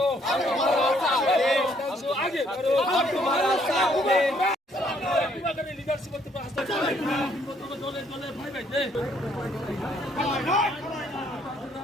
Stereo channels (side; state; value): both; normal; correlation 0.66